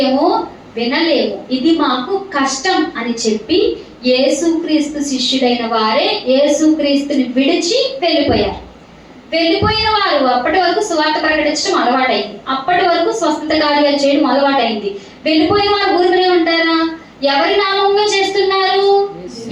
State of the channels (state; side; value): identical; both; correlation 1.00